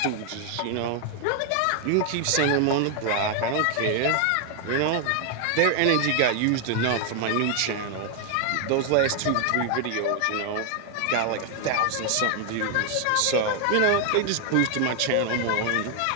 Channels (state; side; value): different; both; correlation 0.00